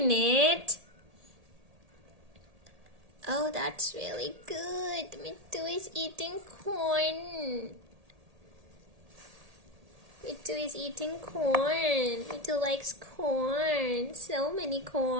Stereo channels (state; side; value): late; left; 1.8 ms